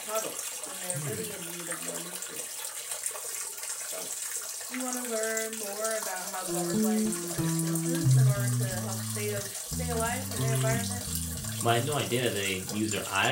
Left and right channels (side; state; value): both; identical; correlation 1.00